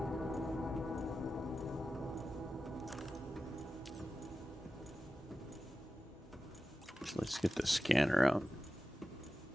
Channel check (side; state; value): both; normal; correlation 0.93